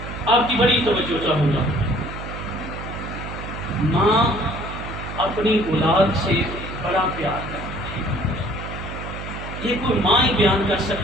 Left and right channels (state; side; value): noise; right; hum, 9 dB below the sound